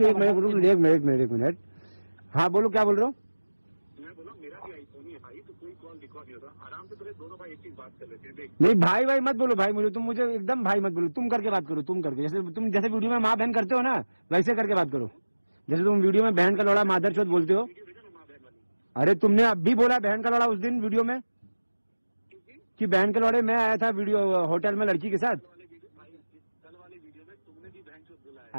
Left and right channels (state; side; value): inverted; both; correlation -1.00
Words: एक मिनट। हाँ बोलो, क्या बोल रहे हो? मैं बोला मेरा भी आईफोन ही है भाई, तो कोई कॉल रिकॉर्ड नहीं होता। आराम से तुम्हें दोनों भाई एक चीज बात कर लेते हैं। देख नहीं भाई भाई मत बोलो भाई, मुझे एकदम भाई मत बोलो, तुम करके बात करो, तुम करके, जैसे वीडियो में माँ बहन करते हो ना, वैसे करके बात करो। जैसे तुम वीडियो में बहन का लौड़ा मादर चौथ बोलते हो। अरे तुमने अब भी बोला बहन का लौड़ा उस दिन वीडियो में, कि बहन के लौड़े मैं आया था वीडियो होटल में लड़की के साथ। कल वाले वीडियो में तुमने भी बहन चोद बोला है।